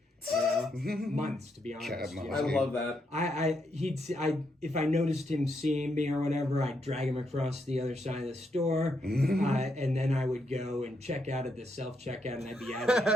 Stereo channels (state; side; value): normal; both; correlation 0.79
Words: You know? Months, to be honest. Cat and mouse. You know? I love that. If I noticed him seeing me or whatever, I'd drag him across the other side of the store, and then I would go and check out at the self-checkout, and I'd be out of